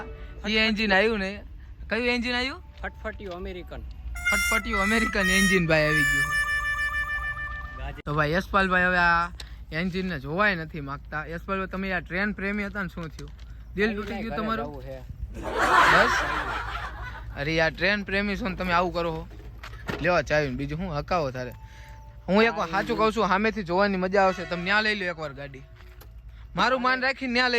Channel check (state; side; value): identical; both; correlation 1.00